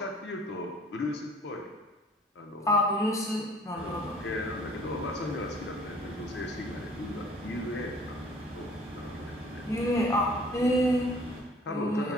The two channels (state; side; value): normal; both; correlation 0.53